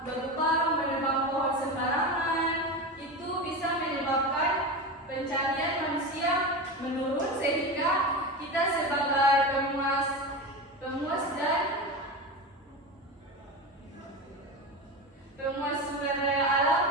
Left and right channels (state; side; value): normal; both; correlation 0.23